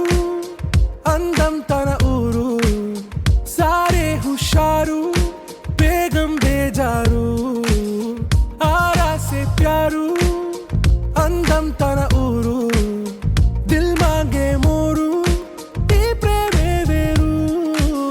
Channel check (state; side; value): identical; both; correlation 1.00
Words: అందం తన ఊరు సారే హుషారు బేగం బేజారు ఆరాసే ప్యారు అందం తన ఊరు దిల్ మాంగే మోరు ఈ ప్రేమే వేరు